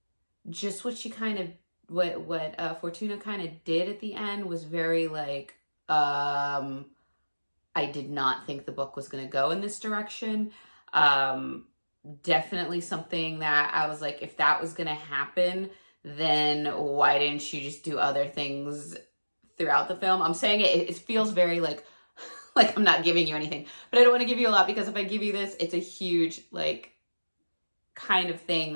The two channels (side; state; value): both; inverted; correlation -1.00